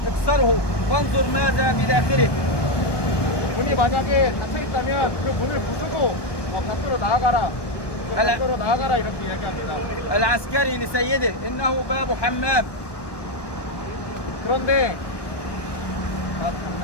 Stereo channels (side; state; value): right; late; 1.2 ms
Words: اكسره وانظر ماذا بداخله. 문이 만약에 닫혀 있다면 그 문을 부수고 밖으로 나아가라. 밖으로 나아가라 이렇게 이야기합니다. العسكري لسيده إنه باب حمام. 그런데